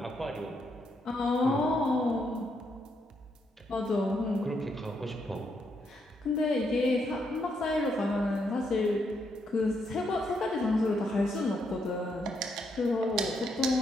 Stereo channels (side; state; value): both; normal; correlation 0.77